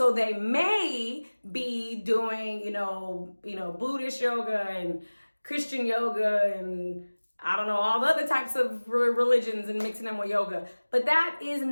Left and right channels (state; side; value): inverted; both; correlation -1.00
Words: they may be doing, Buddhist yoga and Christian yoga and I don't know, all the other types of religions and mixing them with yoga. But that is